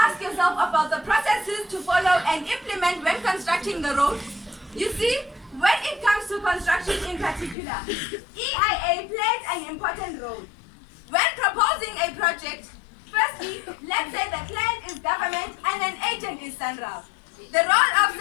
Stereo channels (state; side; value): drops out; right; at 7.6 s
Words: asked yourself about the processes to follow and implement when constructing the road? You see, when it comes to construction in particular, EIA plays an important role. When proposing a project, firstly, let's say the client is government and an agent is Central. The role of